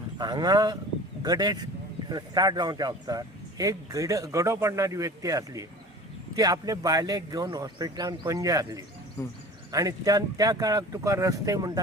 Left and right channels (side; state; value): both; normal; correlation 0.40